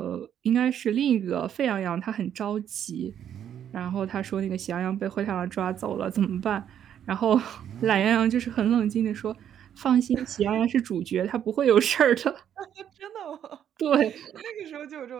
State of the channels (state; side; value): quieter; left; 9.6 dB